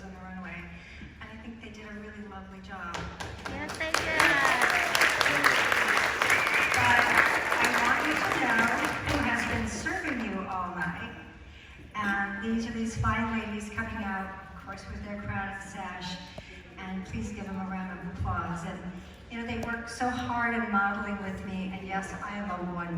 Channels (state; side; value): identical; both; correlation 1.00